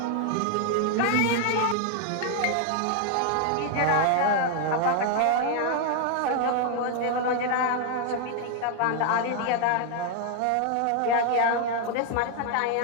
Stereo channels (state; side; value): different; both; correlation 0.00